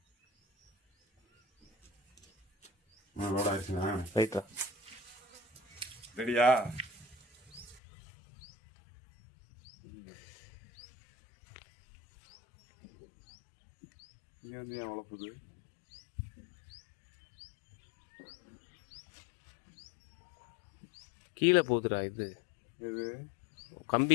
லோட் ஆயிடுச்சுண்ணா. ரைட்டா. ரெடியா? இங்கே வந்து ஏன் வளர்ப்புது? கீழே போகுதுடா இது. இது கம்பி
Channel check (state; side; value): drops out; right; at 7.8 s